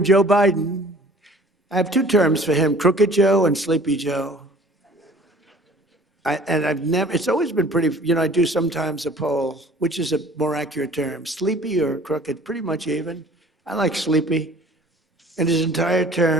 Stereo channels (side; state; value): both; normal; correlation 0.51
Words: Joe Biden, I have 2 terms for him, Crooked Joe and Sleepy Joe. It's always been pretty, you know, I do sometimes a poll, which is a more accurate term, sleepy or crooked, pretty much even. I like sleepy. In his entire